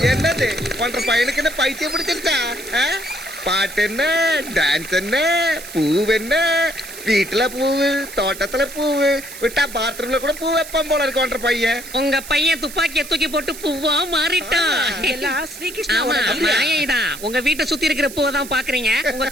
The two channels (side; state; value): right; noise; hiss, 13 dB below the sound